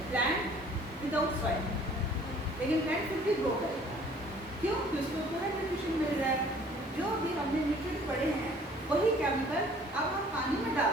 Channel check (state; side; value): normal; both; correlation 0.54